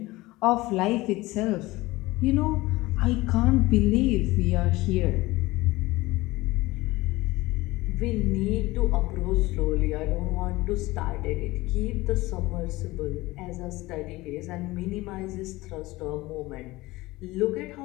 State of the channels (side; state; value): right; quieter; 19.9 dB